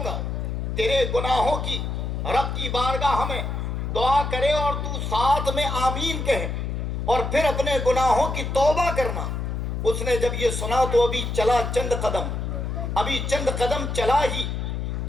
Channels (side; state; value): left; noise; hum, 3 dB below the sound